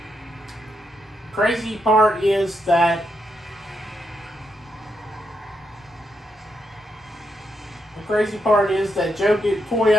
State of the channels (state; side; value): normal; both; correlation 0.81